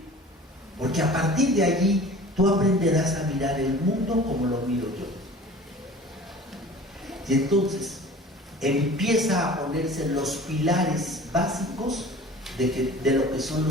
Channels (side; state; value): both; normal; correlation 0.42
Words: Porque a partir de allí tú aprenderás a mirar el mundo como lo miro yo. Y entonces empieza a ponerse los pilares básicos de lo que son